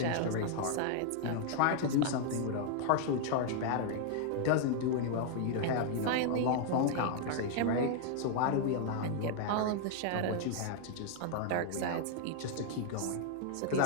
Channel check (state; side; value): different; both; correlation 0.00